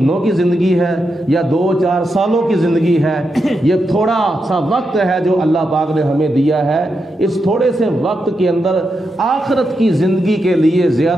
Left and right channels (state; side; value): normal; both; correlation 0.85